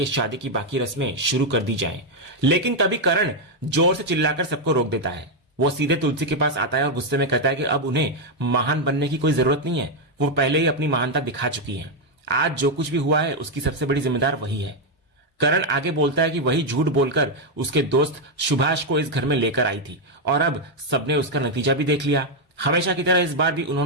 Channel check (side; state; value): both; normal; correlation 0.02